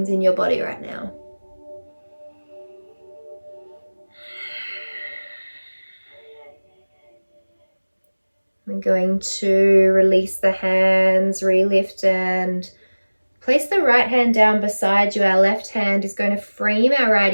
in your body right now. We're going to release the hands, relift, and place the right hand down beside you. Our left hand is going to frame our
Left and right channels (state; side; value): inverted; both; correlation -1.00